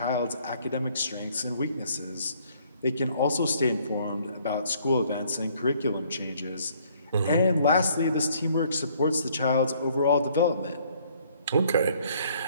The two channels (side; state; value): both; inverted; correlation -0.62